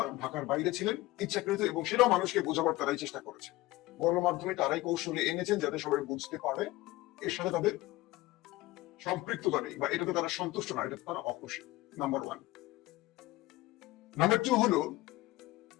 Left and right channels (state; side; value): quieter; right; 18.7 dB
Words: ঢাকার বাইরে ছিলেন ইচ্ছাকৃত, এবং সেটাও মানুষকে বোঝাবার তারাই চেষ্টা করেছে। গণমাধ্যমে তারাই কৌশলে এনেছেন যাতে সবাই বুঝতে পারে এর সাথে তাদের সম্পৃক্ততা নেই বা এটাতে তারা সন্তুষ্ট না, এটাতে তারা অখুশি। নাম্বার 1। নাম্বার 2 হলো,